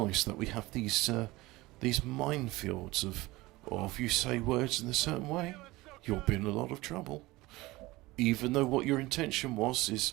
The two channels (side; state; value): left; quieter; 20.1 dB